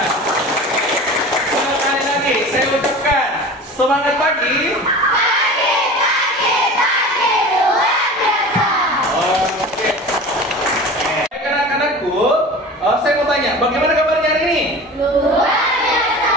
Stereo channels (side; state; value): both; normal; correlation 0.36